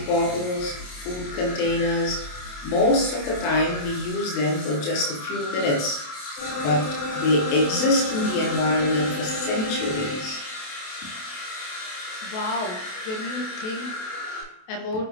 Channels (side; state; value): right; late; 28 ms